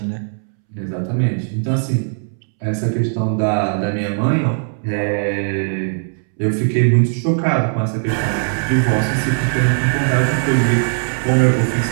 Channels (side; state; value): left; silent; 67 dB below the other